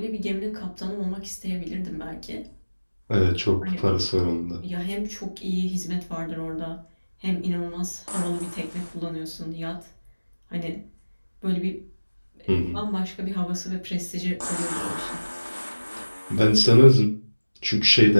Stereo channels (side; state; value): both; inverted; correlation -1.00